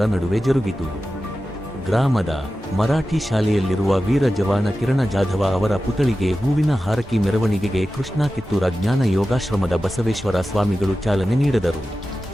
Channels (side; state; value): both; normal; correlation 0.94